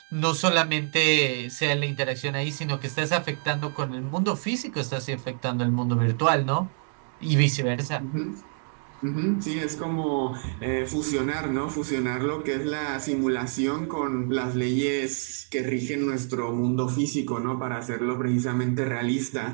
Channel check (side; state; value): left; silent; 57 dB below the other